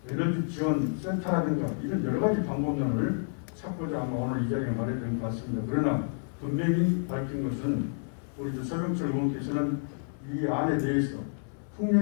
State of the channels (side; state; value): right; silent; 58 dB below the other